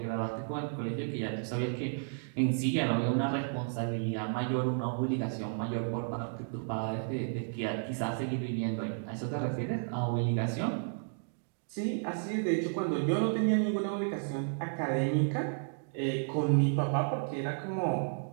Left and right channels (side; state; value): left; silent; digital silence